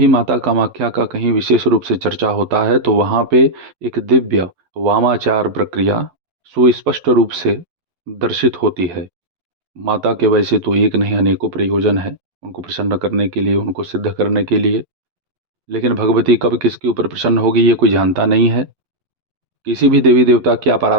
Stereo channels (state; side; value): late; left; 11 ms